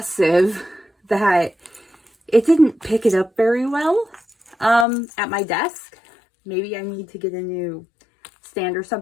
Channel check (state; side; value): drops out; right; at 4.9 s